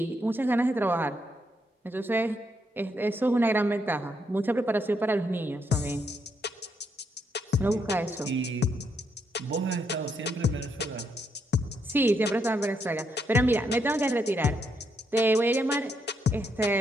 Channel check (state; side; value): normal; both; correlation 0.77